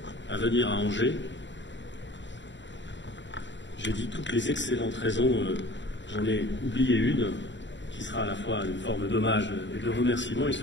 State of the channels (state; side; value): late; right; 0.53 ms